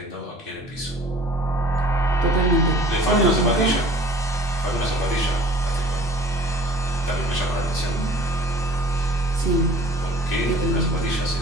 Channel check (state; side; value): normal; both; correlation 0.49